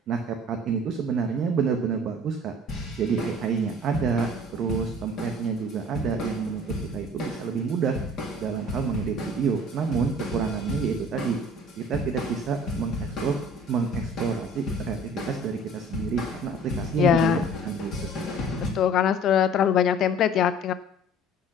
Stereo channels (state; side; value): normal; both; correlation 0.48